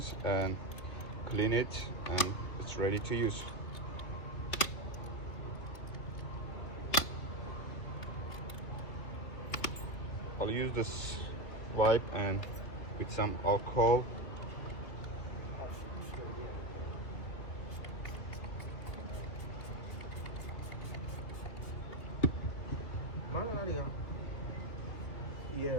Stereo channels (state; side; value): late; right; 3.0 ms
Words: and clean it, and it's ready to use. I'll use this wipe and with some alcohol.